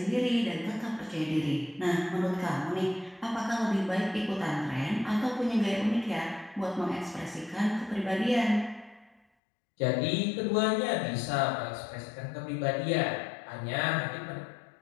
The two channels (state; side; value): drops out; right; at 9.2 s